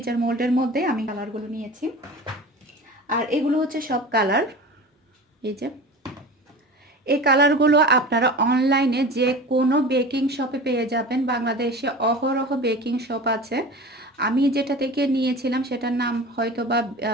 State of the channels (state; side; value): normal; both; correlation 0.35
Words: মোল্ডের মধ্যে আমি কালারগুলো নিয়েছি। আর এগুলো হচ্ছে সব কালার। এই যে এই কালারগুলো আপনারা অনলাইনে যে কোনো বেকিং শপে পেয়ে যাবেন। বাংলাদেশে অহরহ বেকিং শপ আছে। আমি যেটা থেকে নিয়েছিলাম সেটার নাম হয়তো বা